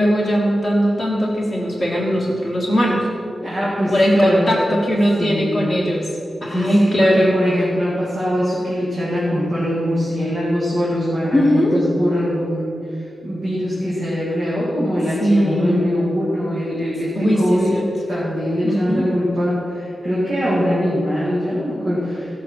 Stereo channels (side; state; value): both; normal; correlation 0.92